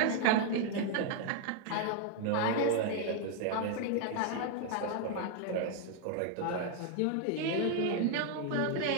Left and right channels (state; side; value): different; both; correlation 0.00